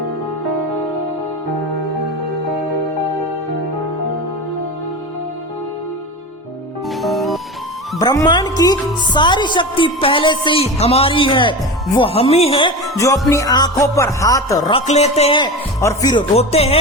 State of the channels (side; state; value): both; normal; correlation 0.27